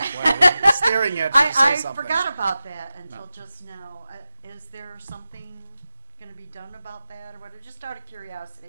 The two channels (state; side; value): inverted; both; correlation -0.94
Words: why I was staring at you to say I something. forgot about that until No. just now. Is there something going to be done about that or what? Just out of